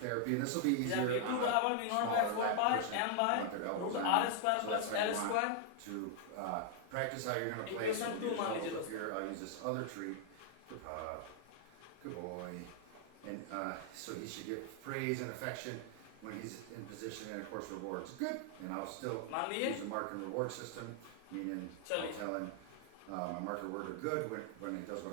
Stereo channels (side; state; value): both; different; correlation 0.00